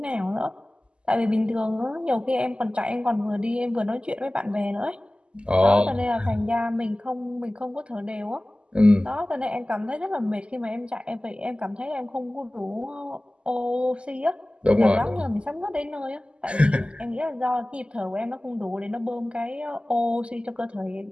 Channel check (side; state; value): left; late; 0.052 ms